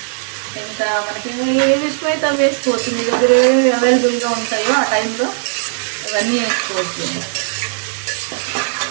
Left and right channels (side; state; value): left; silent; 62 dB below the other